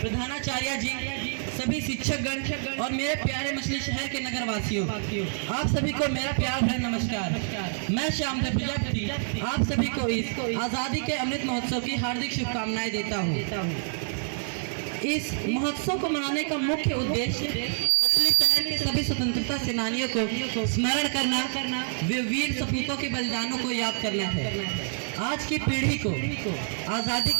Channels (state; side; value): silent; left; 59 dB below the other